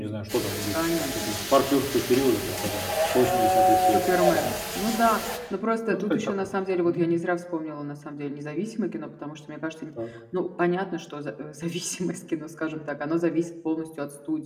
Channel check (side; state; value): both; identical; correlation 1.00